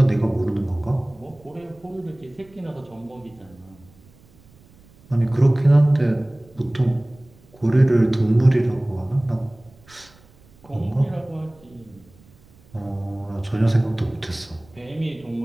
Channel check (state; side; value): noise; right; rumble, 27 dB below the sound